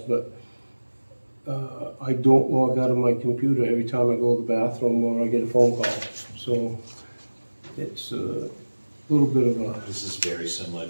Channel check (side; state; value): both; inverted; correlation -1.00